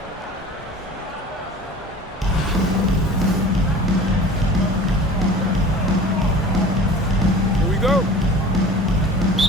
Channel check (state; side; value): normal; both; correlation 0.42